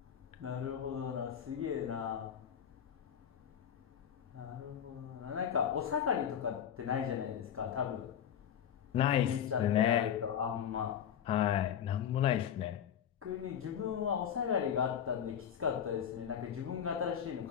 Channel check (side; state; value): right; quieter; 8.9 dB